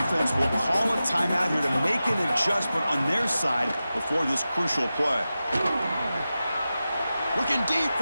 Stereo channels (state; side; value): inverted; both; correlation -0.94